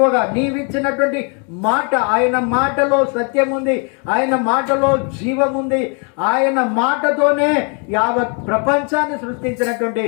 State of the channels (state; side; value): quieter; right; 37.9 dB